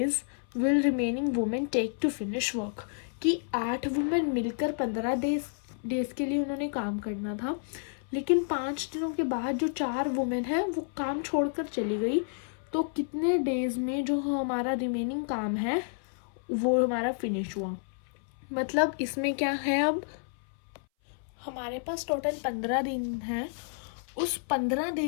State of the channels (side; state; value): right; silent; 58 dB below the other